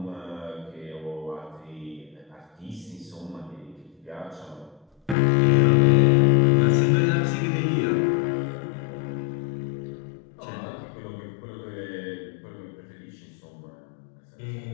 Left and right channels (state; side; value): drops out; right; at 5.2 s